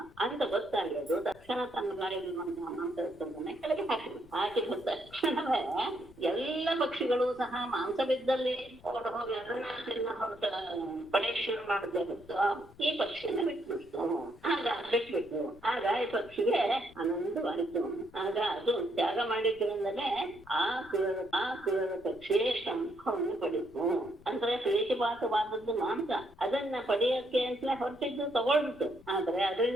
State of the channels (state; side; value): noise; left; rumble, 23 dB below the sound